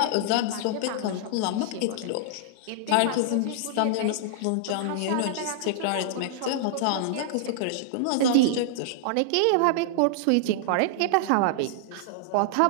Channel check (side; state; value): both; different; correlation -0.01